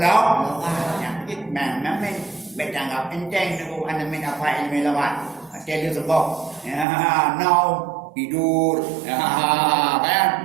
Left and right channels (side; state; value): left; drops out; at 6.9 s